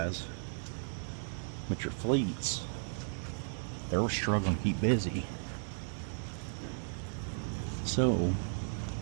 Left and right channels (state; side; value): silent; left; digital silence